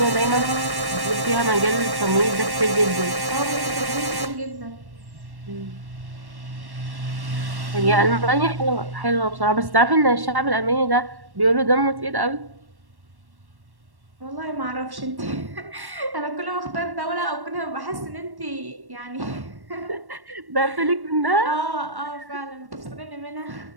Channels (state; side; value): late; left; 1.1 ms